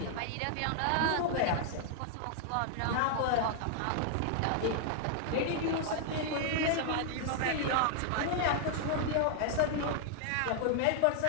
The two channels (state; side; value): different; both; correlation -0.01